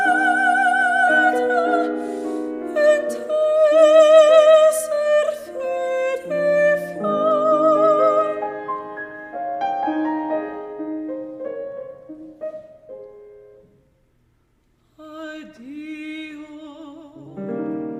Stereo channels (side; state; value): both; identical; correlation 1.00